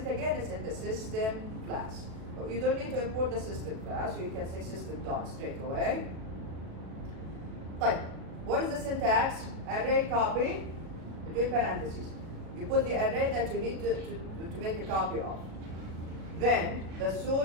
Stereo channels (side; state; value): left; late; 37 ms